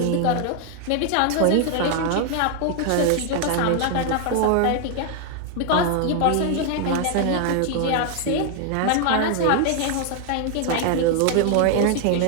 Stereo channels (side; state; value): both; different; correlation 0.00